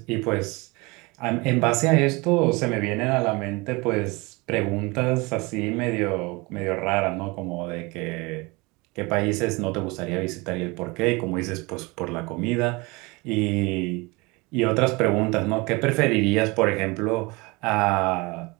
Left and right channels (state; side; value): quieter; left; 25.4 dB